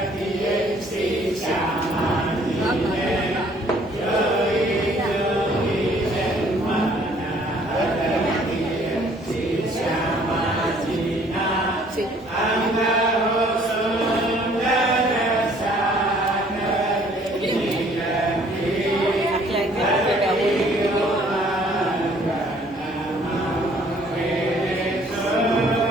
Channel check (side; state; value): both; normal; correlation 0.59